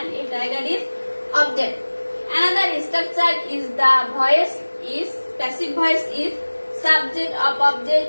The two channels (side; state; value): both; inverted; correlation -1.00